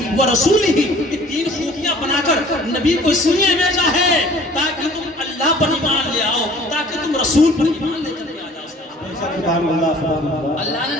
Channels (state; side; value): normal; both; correlation 0.51